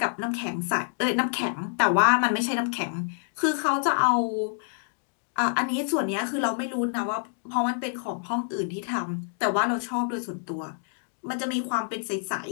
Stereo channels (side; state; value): right; silent; digital silence